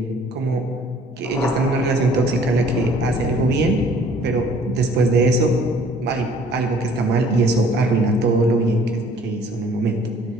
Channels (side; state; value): both; normal; correlation 0.56